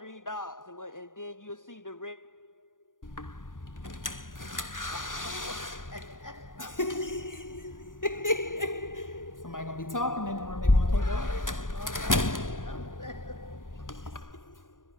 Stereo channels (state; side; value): late; right; 0.89 ms